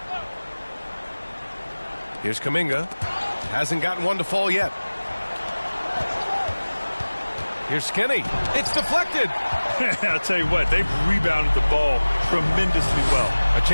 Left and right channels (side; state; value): both; inverted; correlation -1.00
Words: Here's Kuminga. Hasn't gotten one to fall yet. Here's Skinny. It's deflected. I'll tell you what, they've rebounded the ball tremendously well. A